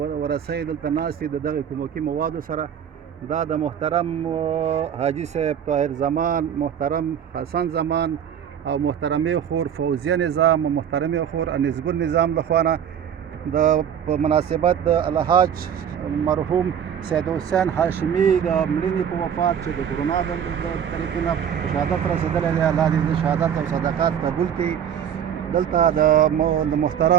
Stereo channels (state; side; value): quieter; left; 8.7 dB